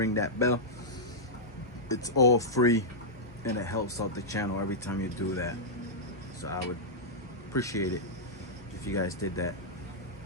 that bell. It's all free and it helps out the channel every time you do that, so I would appreciate it if you guys did that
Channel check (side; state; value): both; normal; correlation -0.10